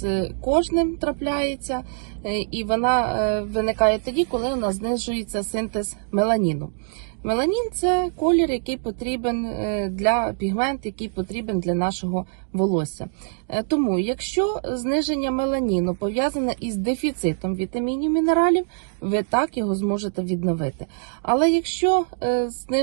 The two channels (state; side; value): silent; left; digital silence